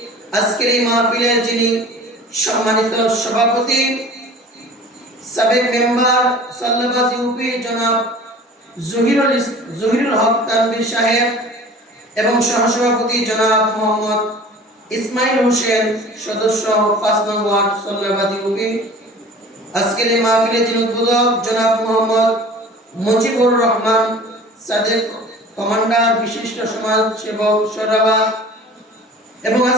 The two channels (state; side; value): normal; both; correlation 0.43